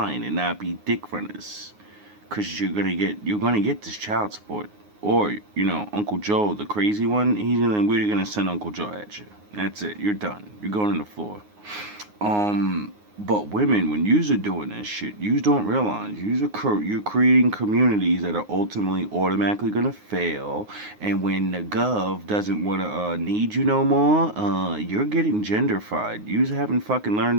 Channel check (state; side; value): late; left; 9.6 ms